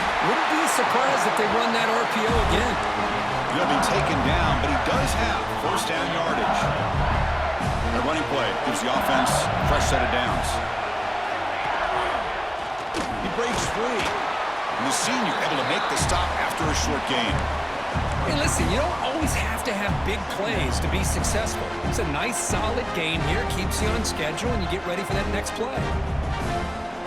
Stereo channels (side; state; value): both; identical; correlation 1.00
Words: Wouldn't be surprised if they run that RPO again. He'll be taken down, but he does have first down yardage. The running play gives the offense a fresh set of downs. He breaks free. And the senior able to make the stop after a short gain. Hey, listen, you don't always have to have big plays to be successful. It's a nice, solid gain here. Keeps you on schedule, and you get ready for that next play.